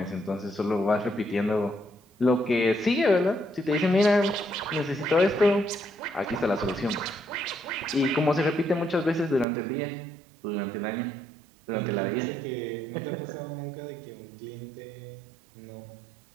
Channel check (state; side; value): drops out; left; at 9.5 s